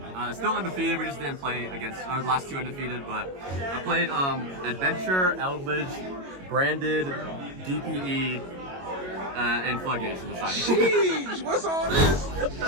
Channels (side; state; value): left; late; 22 ms